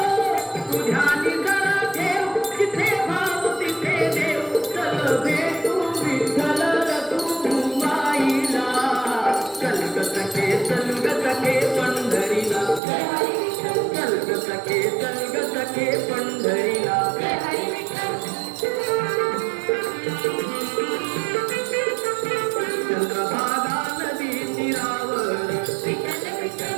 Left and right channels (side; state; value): left; drops out; at 12.8 s